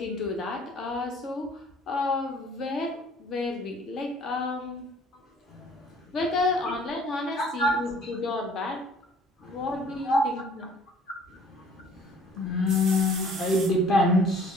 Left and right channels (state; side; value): normal; both; correlation 0.55